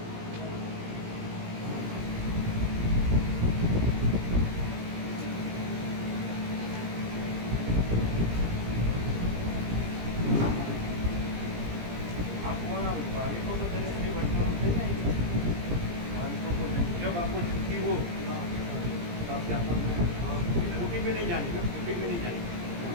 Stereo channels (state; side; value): late; left; 17 ms